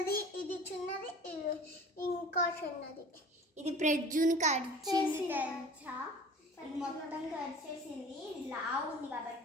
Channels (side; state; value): both; normal; correlation 0.43